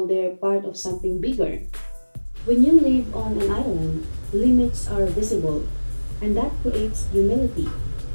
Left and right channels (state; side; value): inverted; both; correlation -1.00